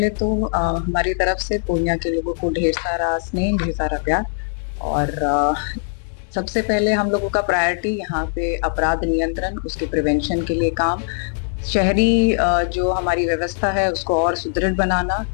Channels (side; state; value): right; silent; digital silence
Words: तो हमारी तरफ से पूर्णिया के लोगों को ढेर सारा स्नेह, ढेर सारा प्यार। और सबसे पहले हम लोगों का प्रायोरिटी यहाँ पे अपराध नियंत्रण, उसके प्रिवेंशन के लिए काम, शहरी जो हमारी व्यवस्था है उसको और सुदृढ़ बनाना,